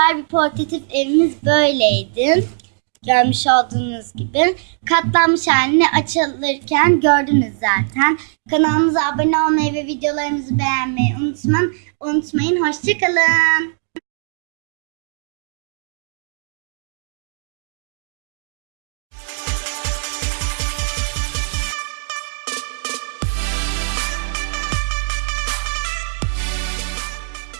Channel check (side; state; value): left; silent; digital silence